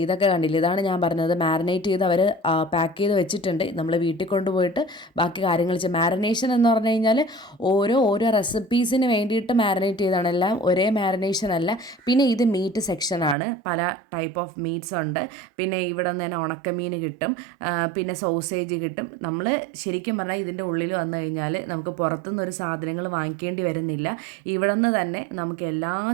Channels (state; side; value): drops out; left; at 13.4 s